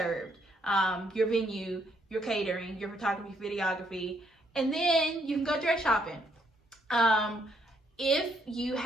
your venue, your catering, your photography, videography, and then you can go dress shopping. If you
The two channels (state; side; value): normal; both; correlation 0.72